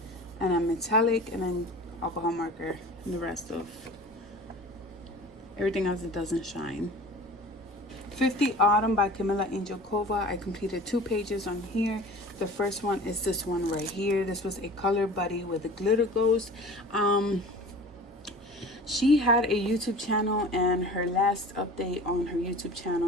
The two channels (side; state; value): both; normal; correlation 0.40